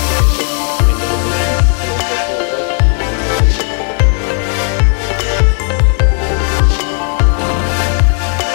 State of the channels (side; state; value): right; quieter; 37.5 dB